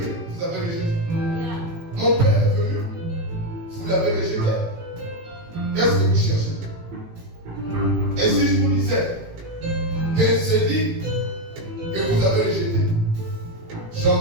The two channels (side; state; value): left; late; 18 ms